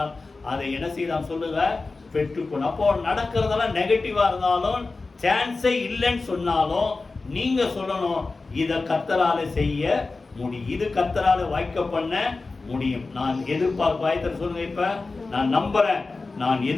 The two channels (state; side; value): quieter; right; 3.7 dB